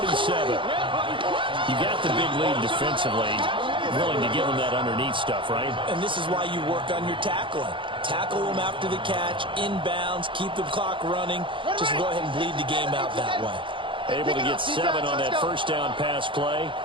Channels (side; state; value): left; late; 0.25 ms